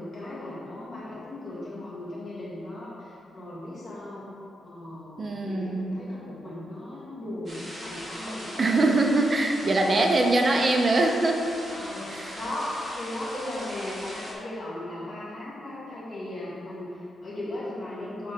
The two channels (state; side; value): normal; both; correlation 0.84